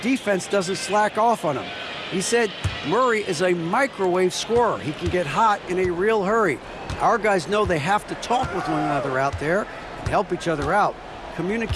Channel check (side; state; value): both; identical; correlation 1.00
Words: doesn't slack off on him. He said Murray is a microwave scorer. He can get hot in a real hurry. Our guys know they have to talk with one another out there and help each other out.